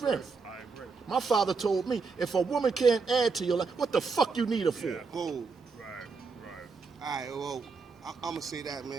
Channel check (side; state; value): left; quieter; 4.7 dB